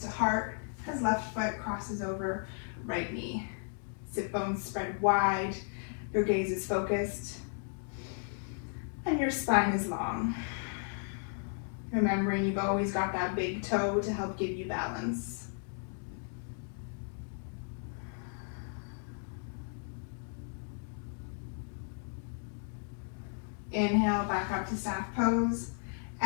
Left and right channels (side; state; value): right; silent; 55 dB below the other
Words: heart, as left foot crosses over right knee. Sit bones spread wide, your gaze is focused, and your spine is long. Remembering you've always got that big toe to help give you balance. Inhale, back up to staff pose.